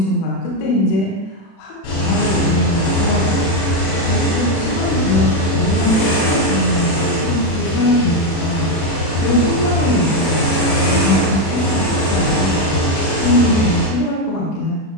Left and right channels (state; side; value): late; right; 36 ms